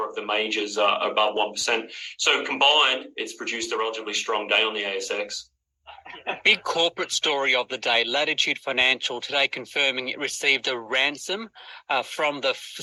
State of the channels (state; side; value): identical; both; correlation 1.00